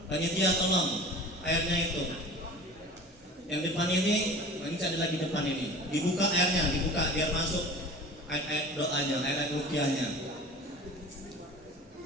Panitia tolong airnya itu. Yang depan ini ada lagi depan ini. Dibuka airnya, dibuka biar masuk air doanya, air ruqyahnya.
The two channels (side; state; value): both; normal; correlation 0.40